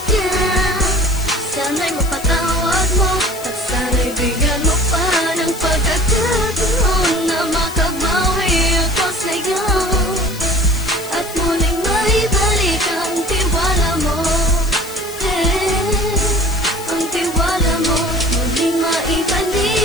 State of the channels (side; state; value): left; noise; hiss, 14 dB below the sound